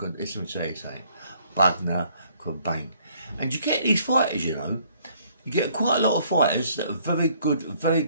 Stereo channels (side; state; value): both; inverted; correlation -0.63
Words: Listen to say Bugner could bang. And you get these fighters, you know, you get quite a lot of fighters that are very